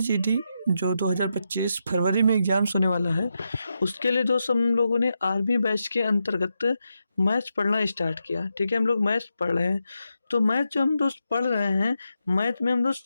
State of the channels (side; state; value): both; inverted; correlation -0.86